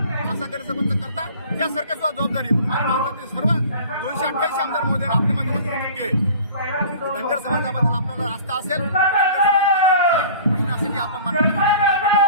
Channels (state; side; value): inverted; both; correlation -0.45